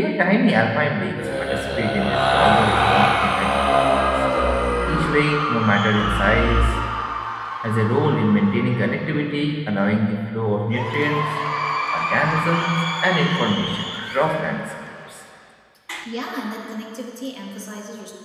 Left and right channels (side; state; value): both; identical; correlation 1.00